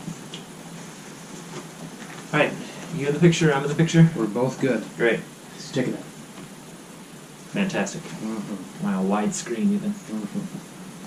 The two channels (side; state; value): both; identical; correlation 1.00